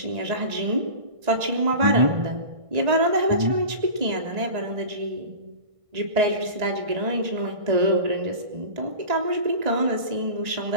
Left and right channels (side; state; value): left; late; 1.5 ms